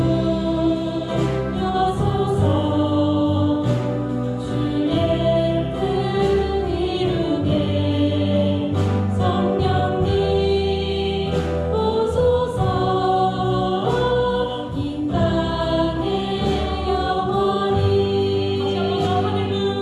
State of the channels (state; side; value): identical; both; correlation 1.00